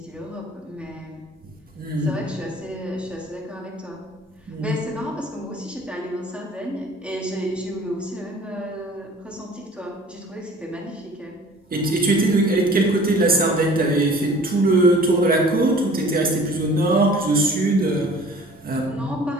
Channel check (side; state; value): both; normal; correlation 0.49